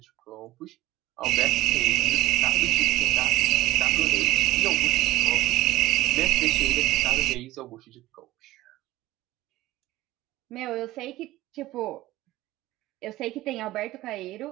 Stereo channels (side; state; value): left; quieter; 16.7 dB